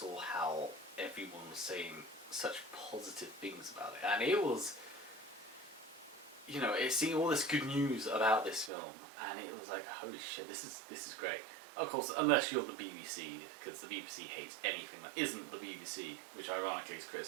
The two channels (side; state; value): left; drops out; at 8.7 s